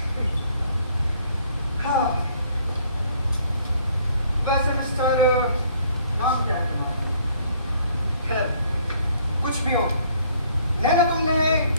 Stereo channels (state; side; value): inverted; both; correlation -0.62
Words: हाँ। वैसे मिस्टर, नाम क्या है तुम्हारा? खैर, कुछ भी हो, नैना तुमने